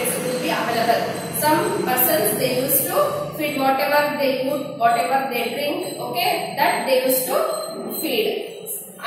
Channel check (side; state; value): both; identical; correlation 1.00